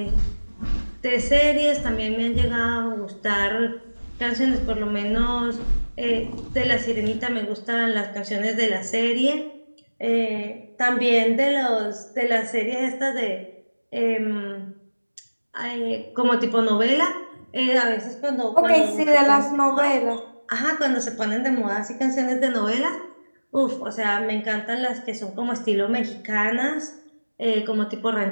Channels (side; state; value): both; inverted; correlation -1.00